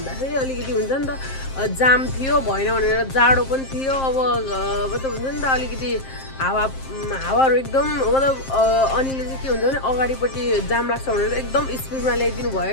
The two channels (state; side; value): late; right; 7.6 ms